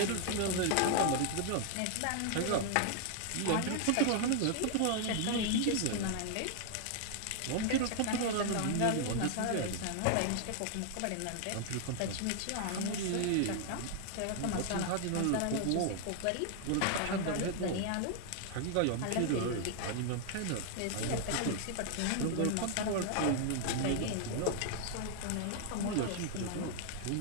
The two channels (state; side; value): different; both; correlation 0.00